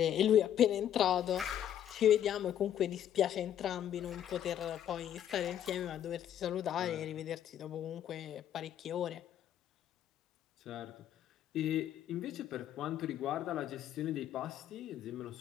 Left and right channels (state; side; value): quieter; right; 10.5 dB